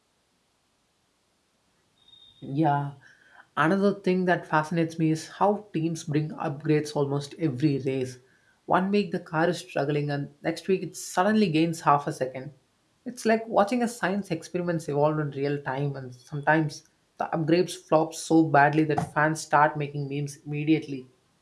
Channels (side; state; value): both; identical; correlation 1.00